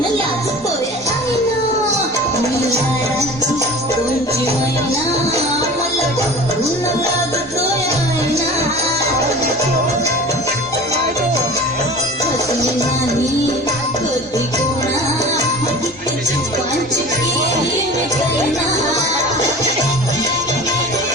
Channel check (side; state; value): both; normal; correlation 0.39